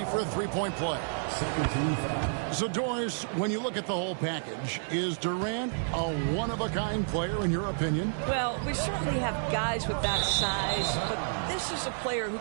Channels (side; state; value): left; silent; digital silence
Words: for a three-point play. So, Doris, when you look at the whole package, is Durant a one-of-a-kind player in your opinion? Well, we certainly have guys with that size, but this is a player who